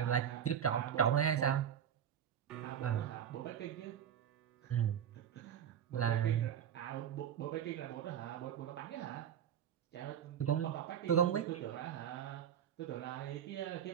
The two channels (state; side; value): quieter; left; 9.2 dB